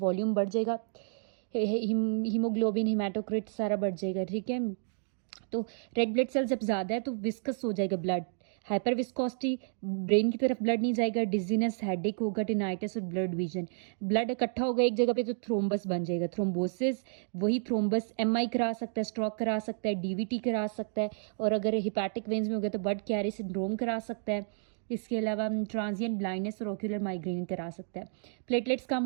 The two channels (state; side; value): silent; left; digital silence